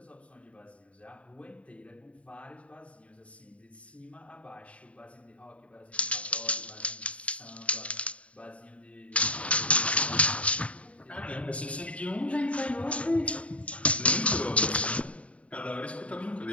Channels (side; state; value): right; late; 0.064 ms